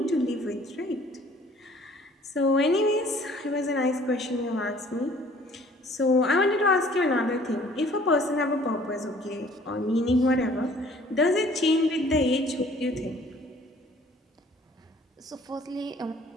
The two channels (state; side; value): normal; both; correlation 0.55